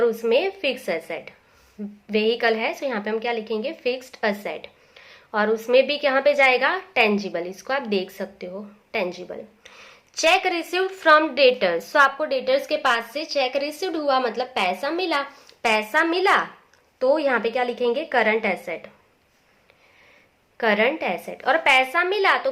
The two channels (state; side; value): identical; both; correlation 1.00